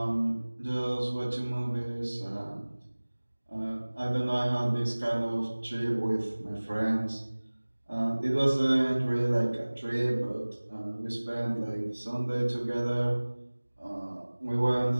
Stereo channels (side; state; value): both; inverted; correlation -1.00